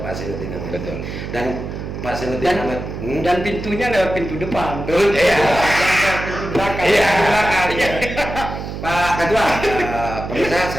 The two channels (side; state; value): right; noise; hum, 7 dB below the sound